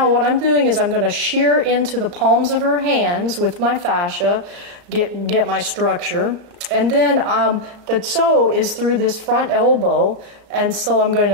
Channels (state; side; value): late; left; 36 ms